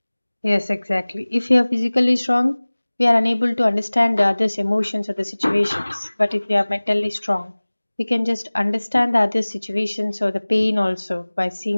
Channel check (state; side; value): inverted; both; correlation -1.00